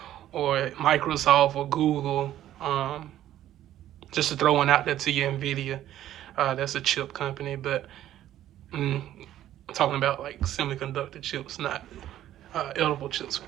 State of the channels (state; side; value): quieter; left; 12.5 dB